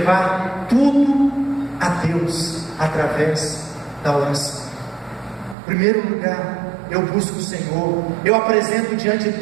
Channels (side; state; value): left; drops out; at 5.6 s